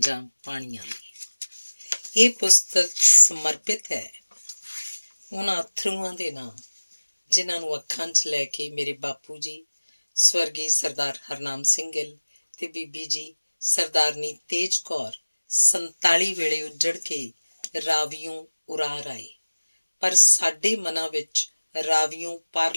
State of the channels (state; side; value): inverted; both; correlation -1.00